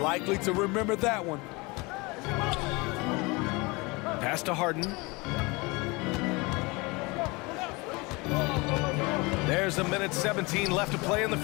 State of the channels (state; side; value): quieter; right; 25.7 dB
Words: to remember that one. Pass to Harden. There's a minute 17 left to play in the